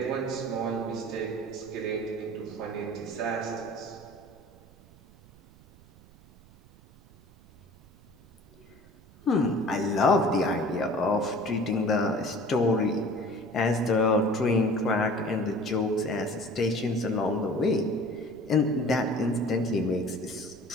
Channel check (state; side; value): noise; right; rumble, 25 dB below the sound